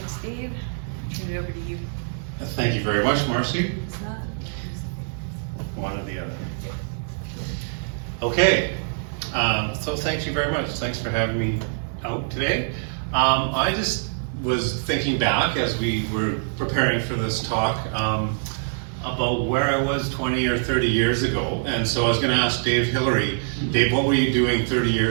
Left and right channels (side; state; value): left; silent; digital silence